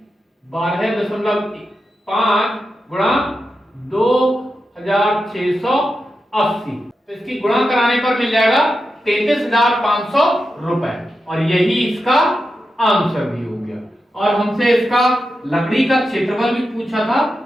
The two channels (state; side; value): normal; both; correlation 0.89